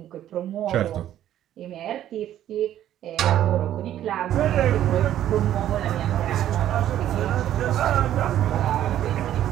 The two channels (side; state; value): left; quieter; 11.8 dB